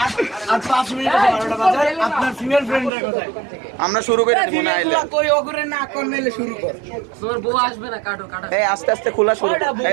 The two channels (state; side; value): drops out; left; at 2.9 s